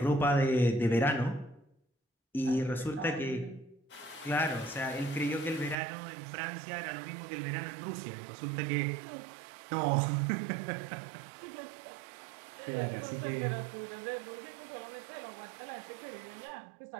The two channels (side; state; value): left; drops out; at 5.8 s